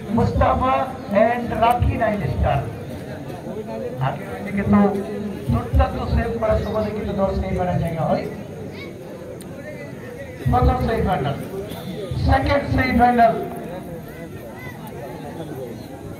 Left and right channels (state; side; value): identical; both; correlation 1.00